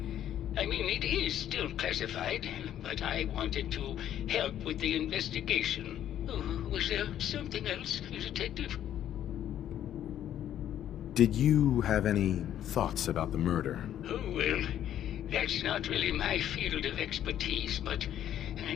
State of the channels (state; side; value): quieter; right; 11.0 dB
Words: I mean, it is still classified, but I wanted to help with the investigation. Oh, was there something else, Detective? Did you have any thoughts about the murder? Oh, well, that's not really my field of expertise, but